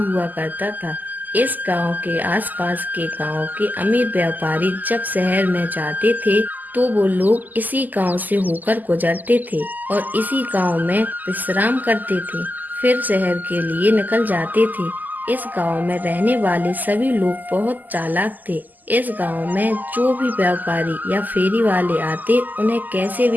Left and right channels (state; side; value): late; left; 0.084 ms